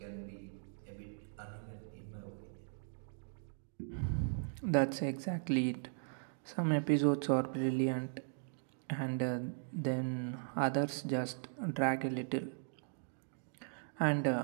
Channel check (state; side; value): silent; left; digital silence